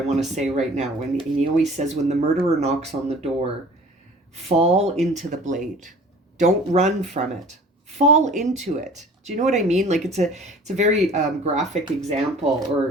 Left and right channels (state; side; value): normal; both; correlation 0.46